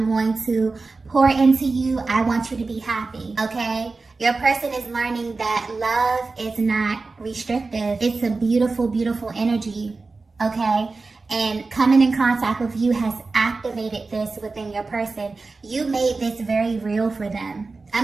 going to pour into you. I want you to be happy, okay? Your person is learning that love is not restrictive. It's a beautiful, beautiful energy, okay? And coming in contact with you has activated this within your person. You made this very real for them.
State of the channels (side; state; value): left; quieter; 3.8 dB